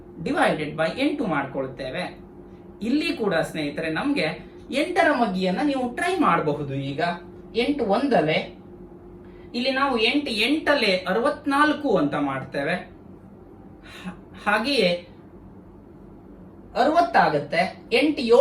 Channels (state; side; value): identical; both; correlation 1.00